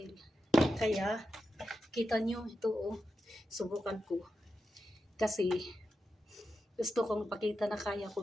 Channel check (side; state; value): both; normal; correlation 0.89